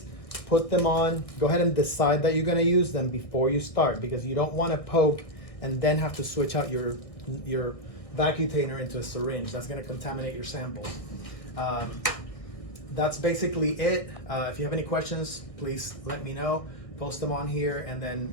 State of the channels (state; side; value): late; right; 1.6 ms